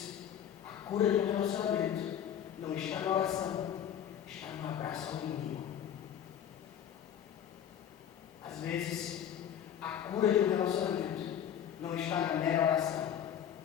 a cura de um relacionamento não está na oração, está no abraço ao inimigo. Às vezes, a cura de um relacionamento não está na mera oração,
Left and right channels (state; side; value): quieter; right; 9.6 dB